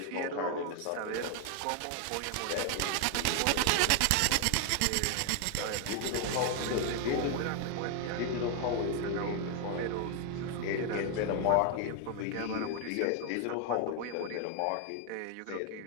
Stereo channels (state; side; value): different; both; correlation 0.00